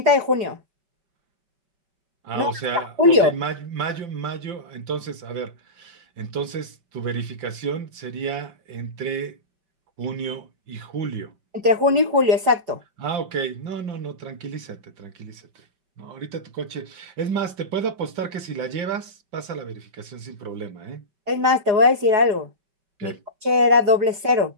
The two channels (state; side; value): late; left; 4.8 ms